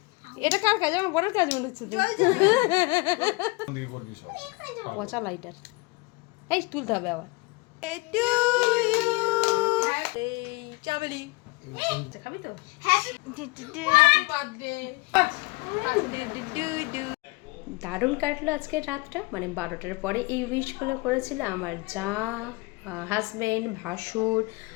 এটা কার কাজ? আমার বড় কাজ মনে হচ্ছে তো। পচা লাইটার এই তুলতে হবে আবার। চাবলি খাবি তো? দারুণ কাটলো আজকের রাতটা, মানে 12টার পরে এই উইশগুলো করেছিল আমার যা, হাজব্যান্ড, ভাসুর,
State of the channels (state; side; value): quieter; right; 25.6 dB